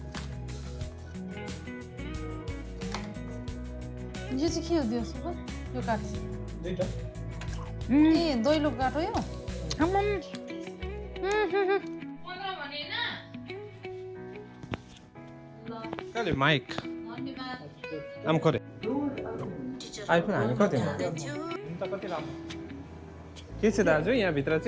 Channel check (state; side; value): identical; both; correlation 1.00